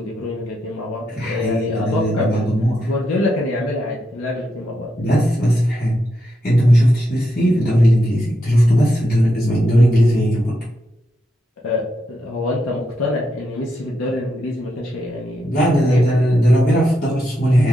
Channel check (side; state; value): both; normal; correlation 0.83